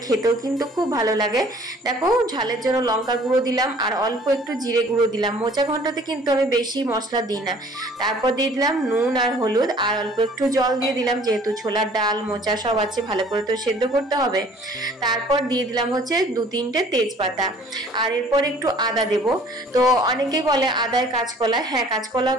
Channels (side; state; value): both; normal; correlation 0.53